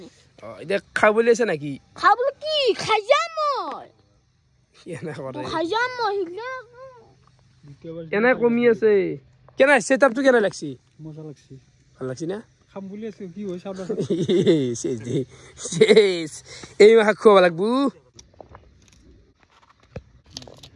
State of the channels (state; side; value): identical; both; correlation 1.00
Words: এতিয়া খাব বুলি আছে নাকি খাব কি খাই যাম মই এনে কৰে খাই যাম মই এনে কমি আছে কেনে সেটআপটো কেনে লাগছি মজা লাগছি ভাল লাগছি না খাম বুলি আছে কি হয় চাব শেষ এই মাহ খুৱাব লাগবো